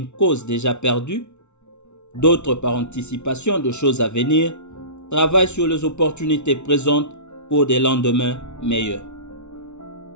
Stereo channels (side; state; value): right; late; 0.82 ms